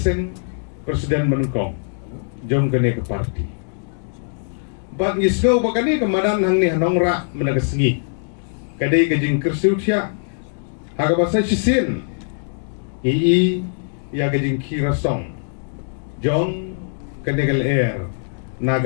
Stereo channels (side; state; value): right; silent; digital silence